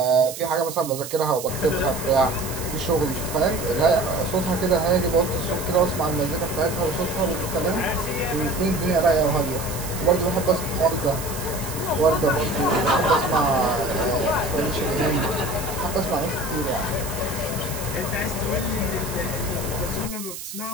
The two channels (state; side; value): noise; right; hiss, 10 dB below the sound